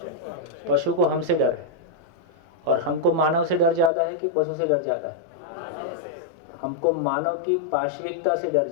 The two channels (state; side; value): drops out; right; at 3.9 s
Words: पशु को हमसे डर है। और हमको मानव से डर ज़्यादा है कि पशु से डर ज़्यादा है? हमको मानव की पाशविकता से डर